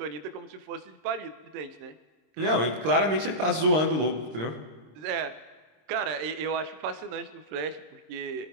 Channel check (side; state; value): left; late; 26 ms